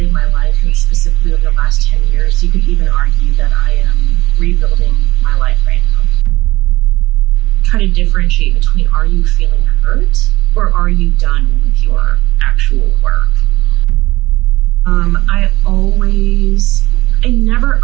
of my life, and specifically over the last 10 years, you could even argue that I am rebuilding my life right now. Try to differentiate between, are you feeling hurt or are you done with your actual work? I never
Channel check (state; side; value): quieter; left; 18.5 dB